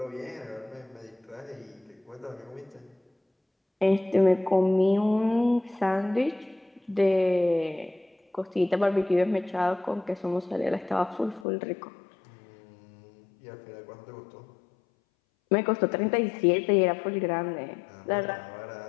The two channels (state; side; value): drops out; right; at 11.5 s